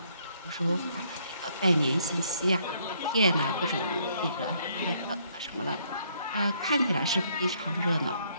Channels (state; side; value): inverted; both; correlation -0.68